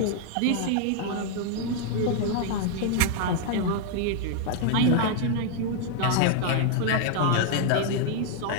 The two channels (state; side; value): different; both; correlation 0.00